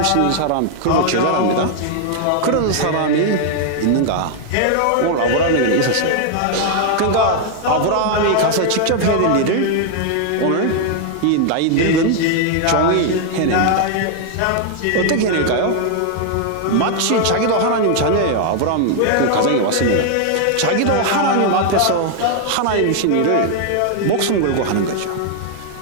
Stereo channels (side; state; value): both; different; correlation 0.00